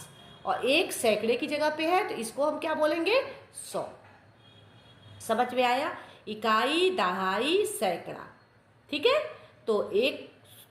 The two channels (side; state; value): both; identical; correlation 1.00